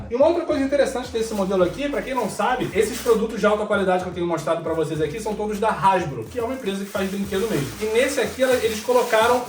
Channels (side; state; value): both; identical; correlation 1.00